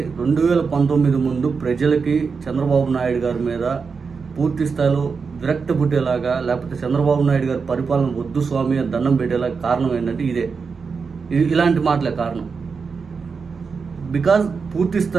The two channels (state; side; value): quieter; left; 5.2 dB